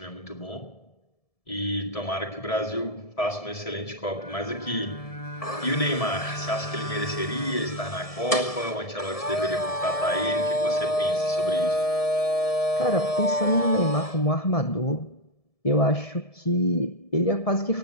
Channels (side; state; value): right; late; 1.7 ms